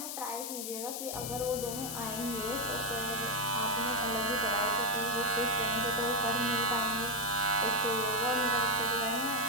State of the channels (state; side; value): noise; left; hiss, 5 dB below the sound